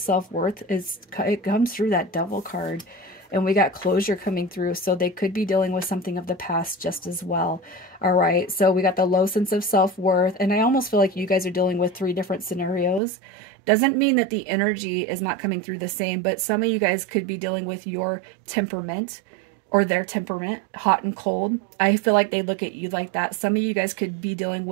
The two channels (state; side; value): drops out; left; at 13.0 s